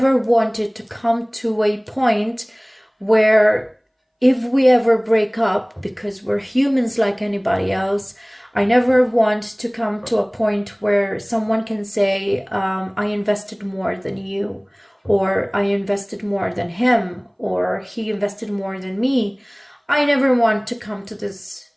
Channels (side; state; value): both; identical; correlation 1.00